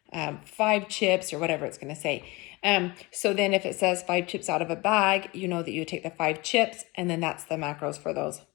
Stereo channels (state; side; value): quieter; right; 23.9 dB